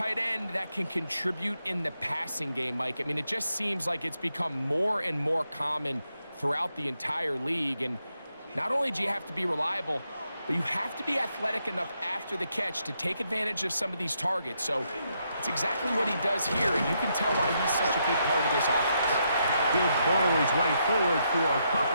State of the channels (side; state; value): both; inverted; correlation -0.79